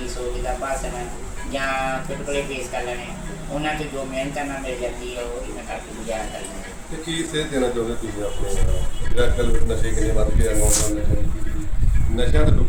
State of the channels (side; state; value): both; identical; correlation 1.00